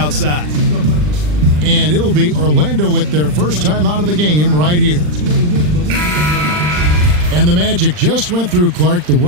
And it'll be Orlando with their first time out of the game right here. And the Magic just went through, Clark, the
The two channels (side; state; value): left; late; 40 ms